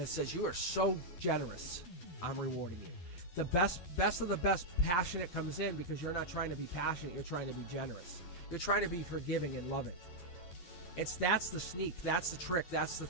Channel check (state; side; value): late; right; 11 ms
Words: it says, you are so generous, I'm rewarding you. The best of the best passionate comes in because you're not trying to be passionate, you're trying to be generous. You're trying to be forgiving and loving. That's the sneak, that's the trick, that's the